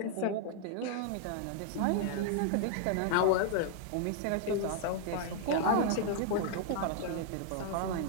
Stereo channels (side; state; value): both; different; correlation 0.00